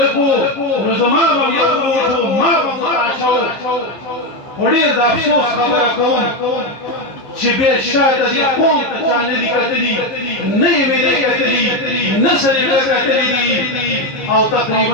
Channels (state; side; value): late; right; 15 ms